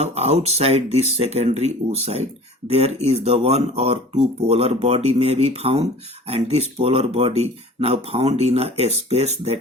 outside this secondary oocyte, there is the 1 or 2 polar body may be found, and this polar body now found in a space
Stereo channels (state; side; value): normal; both; correlation 0.43